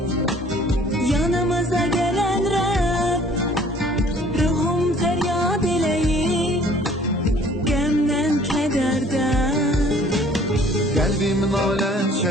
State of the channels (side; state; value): both; normal; correlation 0.55